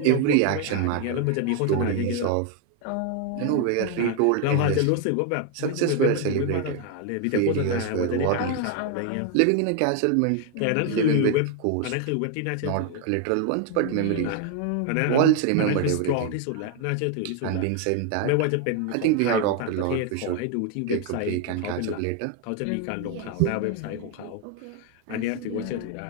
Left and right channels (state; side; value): different; both; correlation 0.01